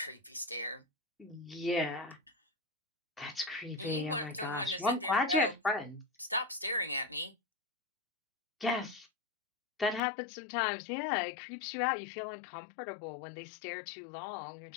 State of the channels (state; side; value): drops out; right; at 10.0 s